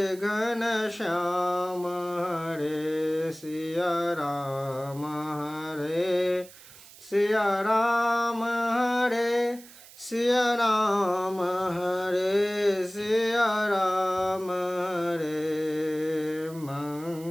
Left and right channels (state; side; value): noise; right; hiss, 20 dB below the sound